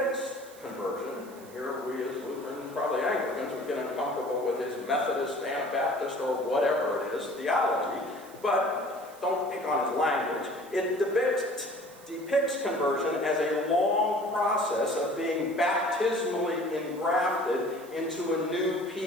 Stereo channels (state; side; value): noise; right; hiss, 22 dB below the sound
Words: conversion. Here we as Lutherans, probably Anglicans, would get uncomfortable with his Methodist, Anabaptist, or whatever it is, theology, but don't pick on his language. It depicts conversion as a long process of being baptismally engrafted into a new